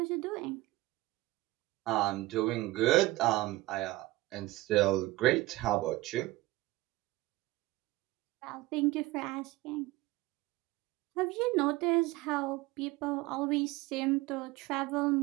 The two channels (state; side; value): quieter; left; 18.9 dB